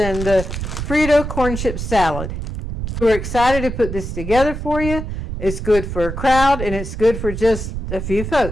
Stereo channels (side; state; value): right; noise; rumble, 6 dB below the sound